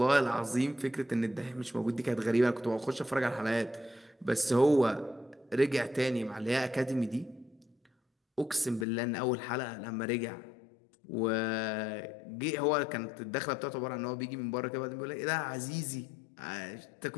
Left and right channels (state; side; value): drops out; right; at 8.8 s